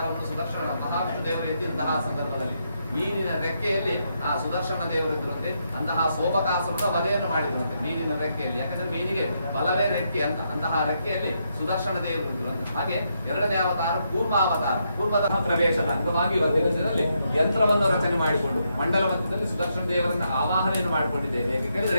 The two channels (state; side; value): inverted; both; correlation -0.79